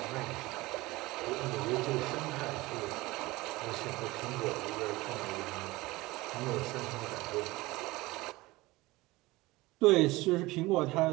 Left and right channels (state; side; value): quieter; left; 20.5 dB